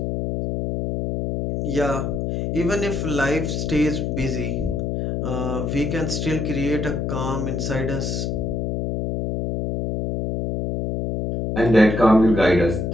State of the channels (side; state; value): left; noise; hum, 1 dB below the sound